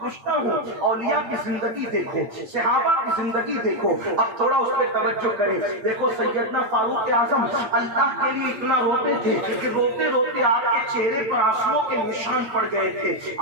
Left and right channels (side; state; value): left; late; 8.7 ms